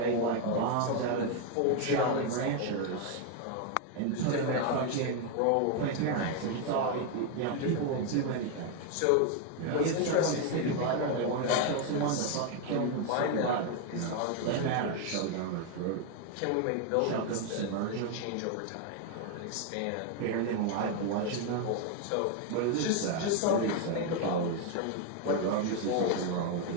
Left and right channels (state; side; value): different; both; correlation 0.01